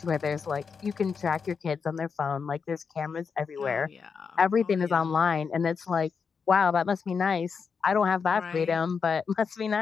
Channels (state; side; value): quieter; right; 5.8 dB